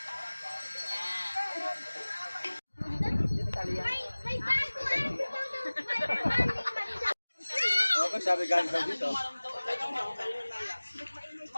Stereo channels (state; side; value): inverted; both; correlation -1.00